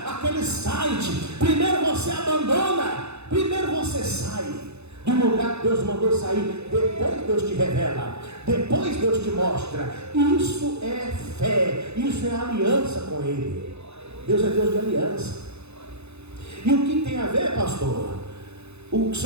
aquele site, primeiro você sai do lugar que Deus mandou sair, depois Deus te revela, depois Deus te mostra. Isso é fé, isso é aliança com Ele. Deus é Deus de aliança. E o que tem a ver, pastor? O que o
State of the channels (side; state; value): left; late; 0.81 ms